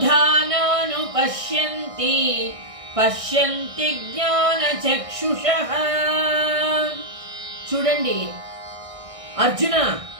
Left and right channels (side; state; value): left; late; 1.6 ms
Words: పశ్యంతి పశ్యంతి జ్ఞానచక్షుషః. చూడండి అర్జున,